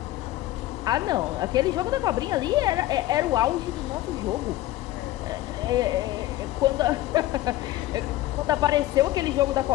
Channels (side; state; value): right; quieter; 15.7 dB